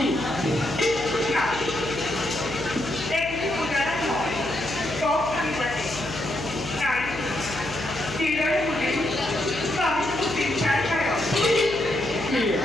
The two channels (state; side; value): noise; left; hum, 12 dB below the sound